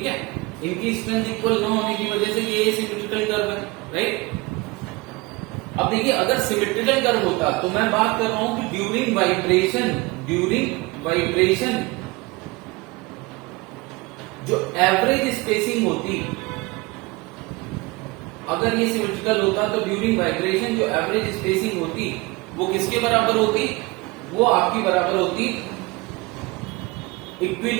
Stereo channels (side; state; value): left; quieter; 23.8 dB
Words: है। इनकी स्ट्रेंथ इक्वल न होने की वजह से ये सिमेट्रिकल कर्व है, राइट। अब देखिए अगर सिमेट्रिकल कर्व होता तो मैं बात कर रहा हूं कि ड्यूरिंग वाइब्रेशन जो एवरेज स्पेसिंग होती, अगर ये सिमेट्रिकल होता तो ड्यूरिंग वाइब्रेशन जो एवरेज स्पेसिंग होती वो किसके बराबर होती, वो आपकी बराबर होती